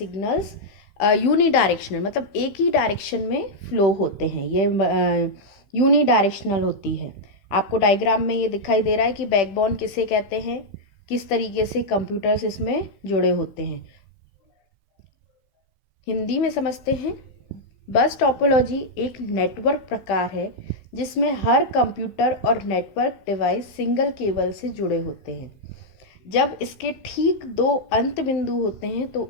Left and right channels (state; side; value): late; right; 15 ms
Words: यूनी डायरेक्शनल, मतलब एक ही डायरेक्शन में फ्लो होते हैं. ये यूनी डायरेक्शनल होती है. आपको डायग्राम में ये दिखाई दे रहा है कि बैकबोन किसे कहते हैं, किस तरीके से कंप्यूटर्स इसमें जुड़े होते हैं. हिंदी में समझते हैं. बस टोपोलॉजी एक नेटवर्क प्रकार है जिसमें हर कंप्यूटर और नेटवर्क डिवाइस सिंगल केबल से जुड़े होते हैं. जब इसके ठीक दो अंत बिंदु होते हैं तो